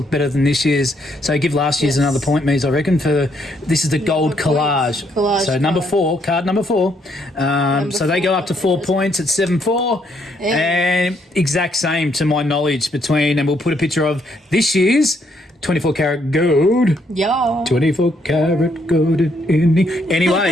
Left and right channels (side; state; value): both; normal; correlation 0.72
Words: better than this year's. So give last year's another point, Mies, I reckon, for this is the gold collage. So number 4, card number 4. So they go up to 4 points at 7-4. And exact same to my knowledge between, and we'll put a picture of this year's 24 karat gold. Yeah. 24 karat gold.